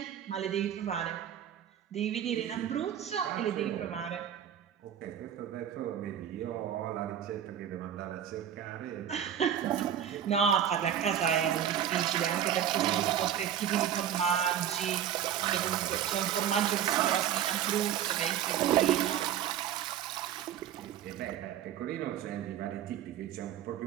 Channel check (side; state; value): left; quieter; 9.9 dB